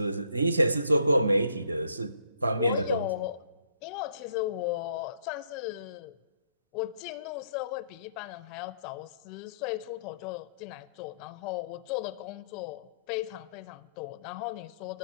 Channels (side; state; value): both; inverted; correlation -0.64